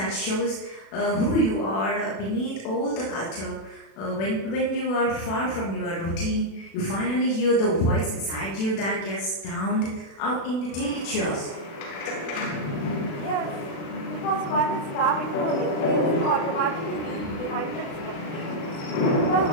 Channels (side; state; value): right; late; 36 ms